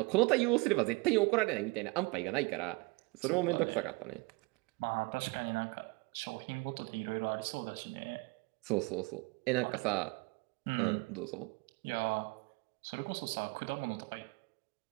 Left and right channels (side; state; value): left; quieter; 26.1 dB